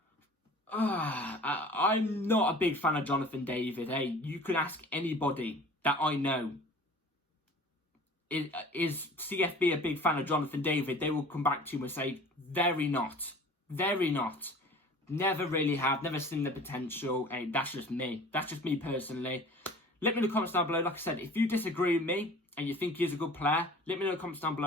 I'm not a big fan of Jonathan David. Hey, you can ask anybody that I know. Is CFB a big fan of Jonathan David? They will come back to you and say, very not. Very not. Never really have. Never seen the potential. Hey, that's just me. That's just me personally. Let me know in the comments down below. Like I said, if you disagree with me and you think he's a good player, let me know in the comments down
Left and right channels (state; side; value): normal; both; correlation 0.45